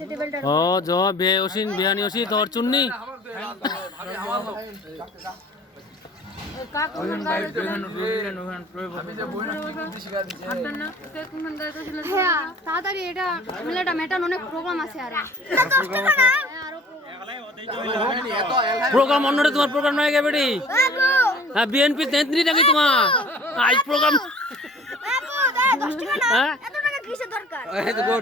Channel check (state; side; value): normal; both; correlation 0.48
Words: টেবিলটা ও জ বে ওসিন বিয়ানি ওসি তোর চুন্নি হ্যাঁ তাড়াতাড়ি এটা ঝামেলাটা মেটান, অনেক প্রোগ্রাম আছে আর প্রোগ্রাম অন্যটা তোমার প্রোগ্রাম নয় গে বেটি হ্যাঁ বিএনপি নেত্রী নাকি তোমার আজ প্রোগ্রাম